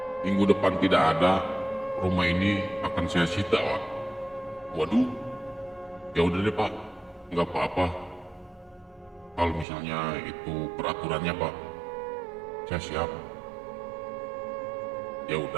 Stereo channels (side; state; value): left; drops out; at 9.7 s